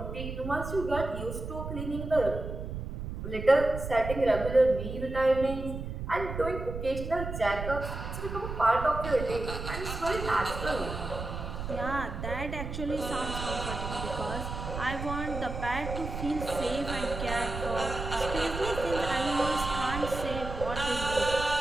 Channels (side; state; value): right; noise; rumble, 6 dB below the sound